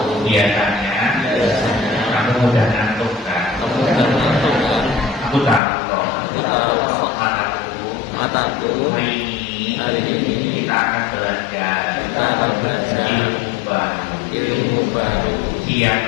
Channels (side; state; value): right; drops out; at 5.6 s